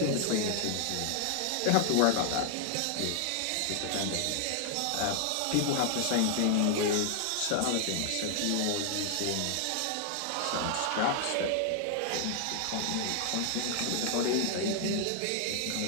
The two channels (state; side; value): different; both; correlation 0.00